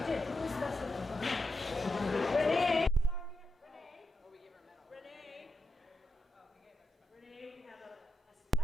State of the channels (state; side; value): normal; both; correlation 0.86